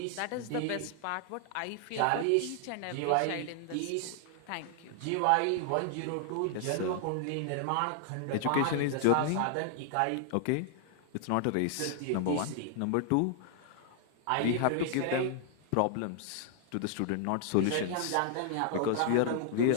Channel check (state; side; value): different; both; correlation 0.00